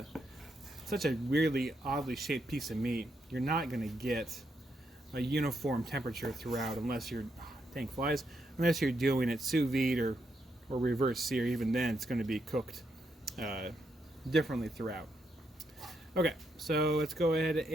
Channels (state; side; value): normal; both; correlation 0.80